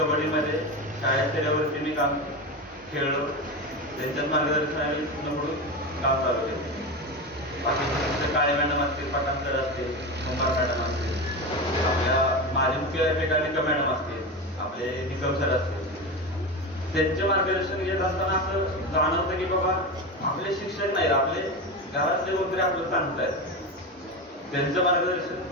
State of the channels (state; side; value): normal; both; correlation 0.21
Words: शाळेत स्तरावरती मी काम खेळलो. त्यांच्याच मार्गदर्शनाने पुढून काम चालू केलं. बाकी काळे मॅडम असतील, पठाण सर असतील, कुंभार मॅडम असतील, आपल्या माझे मुख्याध्यापिका निकम मॅडम असतील, आपले निकम सर असतील, त्यांचे मार्गदर्शन घेत असताना असं जाणवतं की बाबा आपले शिक्षक नाहीत, आपले घरातले वगैरे आपलं सांगतायत. त्यांचं मार्गदर्शन